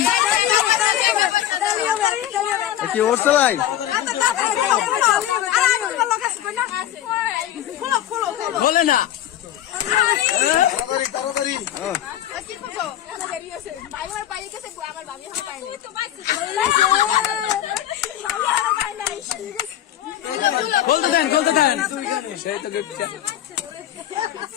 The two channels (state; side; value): quieter; right; 11.9 dB